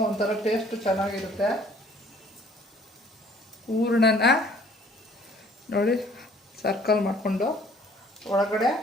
ಒಂಥರ ಟೇಸ್ಟ್ ಚೆನ್ನಾಗಿರುತ್ತೆ. ಹೂರಣನ ನೋಡಿ ಸರ್ಕಲ್ ಮಾಡಿಕೊಂಡು ಒಳಗಡೆ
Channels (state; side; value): normal; both; correlation 0.57